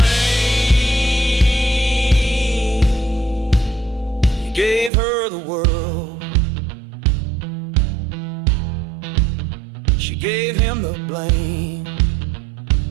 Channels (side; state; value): left; drops out; at 4.9 s